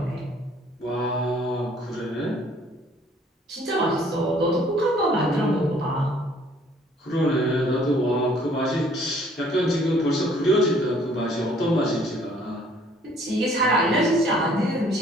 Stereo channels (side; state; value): both; normal; correlation 0.59